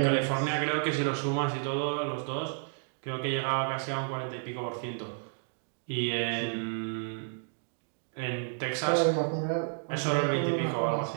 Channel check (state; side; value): silent; left; digital silence